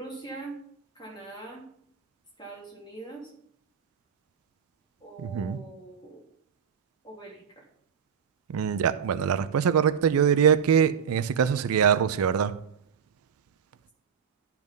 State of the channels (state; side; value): quieter; left; 7.4 dB